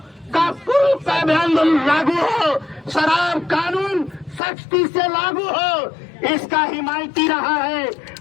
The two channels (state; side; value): drops out; right; at 4.4 s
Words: का पूरी पाबंदी लागू हो, शराब कानून सख्ती से लागू हो, इसका हिमायती रहा है।